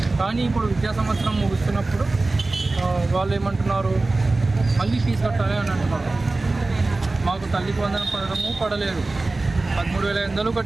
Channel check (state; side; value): quieter; left; 3.2 dB